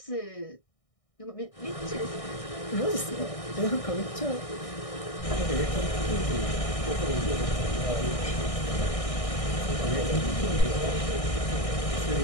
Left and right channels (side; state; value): right; late; 1.6 ms